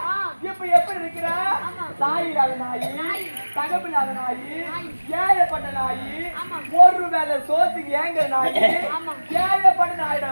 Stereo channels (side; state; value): both; inverted; correlation -1.00